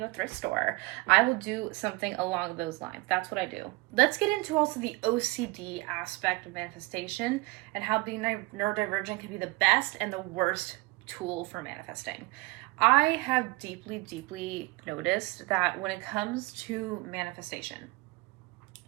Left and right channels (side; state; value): left; quieter; 23.9 dB